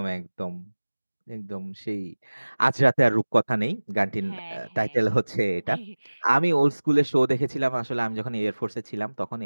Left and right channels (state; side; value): inverted; both; correlation -1.00